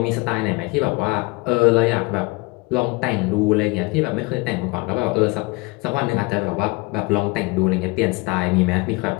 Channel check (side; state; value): right; quieter; 25.7 dB